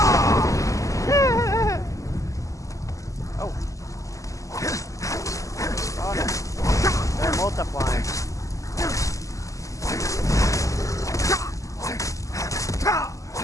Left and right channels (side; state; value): right; late; 0.16 ms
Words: Oh no. They're multiplying.